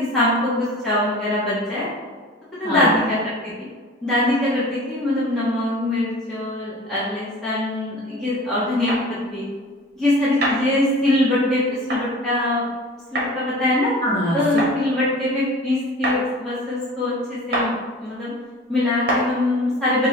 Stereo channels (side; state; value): both; normal; correlation 0.40